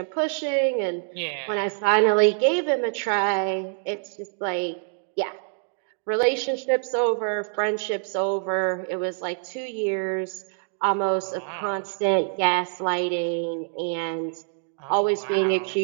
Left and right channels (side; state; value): left; silent; 61 dB below the other